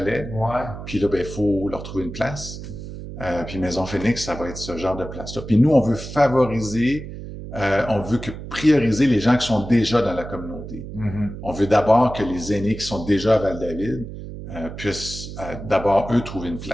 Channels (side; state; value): right; noise; hum, 10 dB below the sound